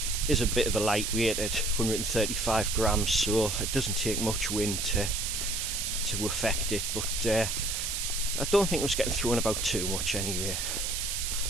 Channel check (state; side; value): noise; right; hiss, 1 dB below the sound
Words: is a bit of a lightweight at 135 grams, so it doesn't take much wind to affect it, but I don't think it was getting thrown about too much anyway.